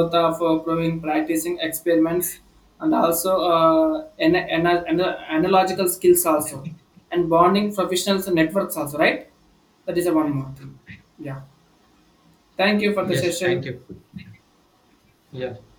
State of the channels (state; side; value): identical; both; correlation 1.00